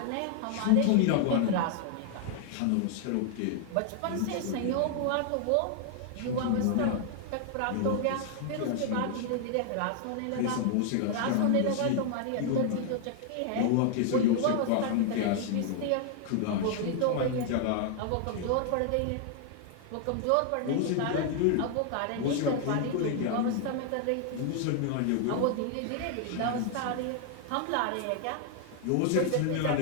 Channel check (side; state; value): both; different; correlation 0.00